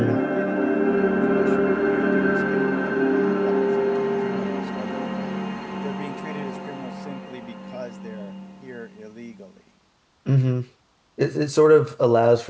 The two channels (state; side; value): identical; both; correlation 1.00